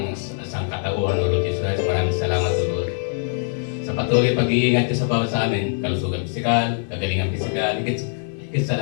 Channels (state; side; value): silent; right; 64 dB below the other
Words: sangkatauhan, Lord Jesus Christ, maraming salamat, Lord. Sa patuloy pag-iingat niyo sa bawat sa amin, kalusugan pisikal, kagalingan pisikal, higit sa